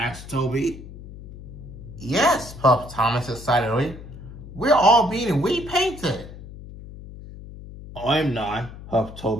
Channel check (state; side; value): noise; left; hum, 14 dB below the sound